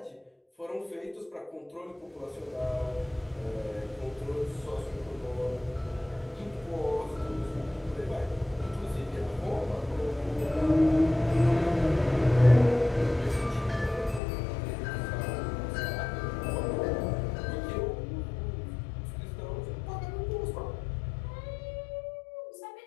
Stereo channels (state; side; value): drops out; right; at 14.2 s